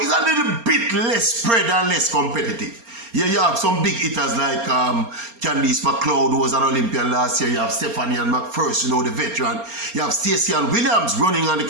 a little bit less spread and less competitive. Yeah, you have some big hitters like Candice McLeod, who was an Olympian last year. You have Stephanie and McPherson, you know, the veteran. You have Stacey and Williams running on the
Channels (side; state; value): left; late; 4.3 ms